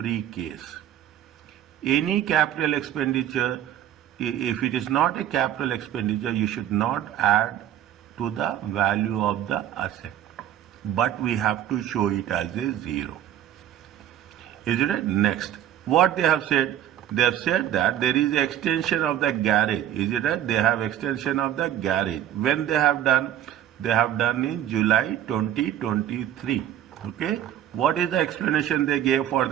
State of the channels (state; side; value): quieter; left; 11.2 dB